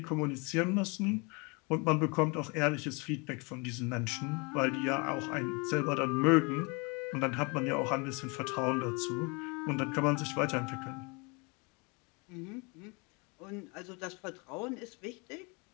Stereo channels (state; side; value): quieter; right; 30.3 dB